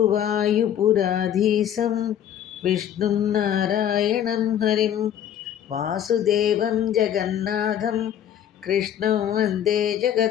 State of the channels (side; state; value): right; quieter; 10.0 dB